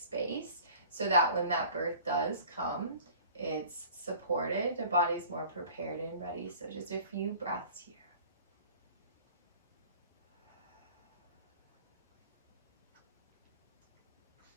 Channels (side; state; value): both; inverted; correlation -0.46